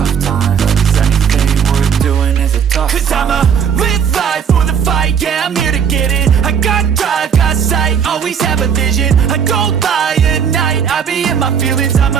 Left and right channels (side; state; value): left; quieter; 7.5 dB